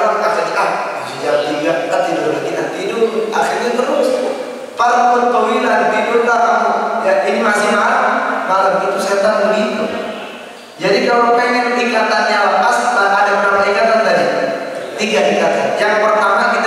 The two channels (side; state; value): both; identical; correlation 1.00